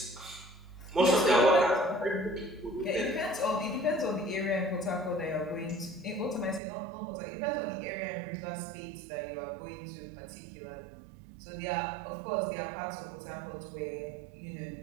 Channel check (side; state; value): left; drops out; at 6.6 s